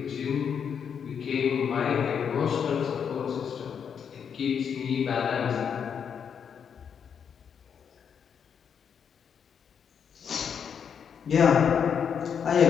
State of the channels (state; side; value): quieter; right; 7.4 dB